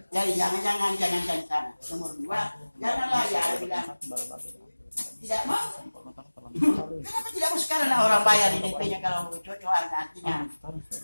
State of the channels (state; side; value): inverted; both; correlation -1.00